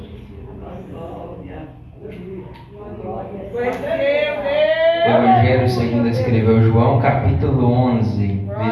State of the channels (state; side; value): identical; both; correlation 1.00